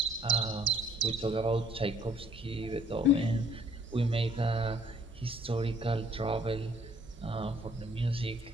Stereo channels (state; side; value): normal; both; correlation 0.60